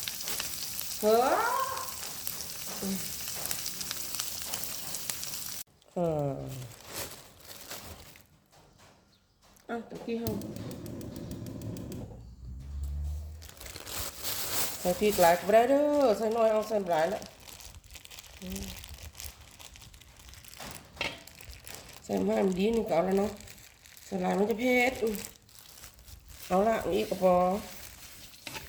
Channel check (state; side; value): identical; both; correlation 1.00